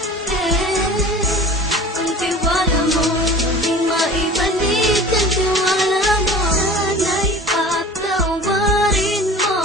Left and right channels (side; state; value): both; normal; correlation 0.39